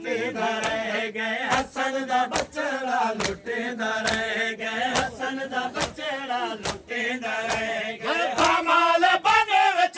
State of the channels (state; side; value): identical; both; correlation 1.00